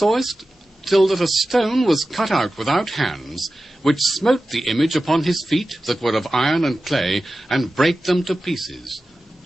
till that a stone was cut out without hands, which smote the image upon his feet that were of iron and clay, and brake them to pieces.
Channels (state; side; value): normal; both; correlation 0.94